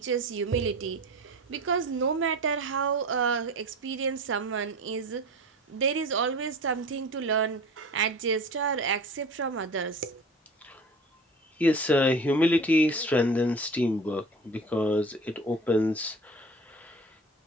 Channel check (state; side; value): normal; both; correlation 0.37